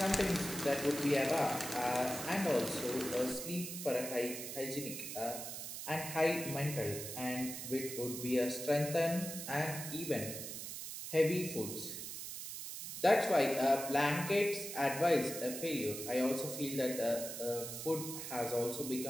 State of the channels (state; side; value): noise; right; hiss, 7 dB below the sound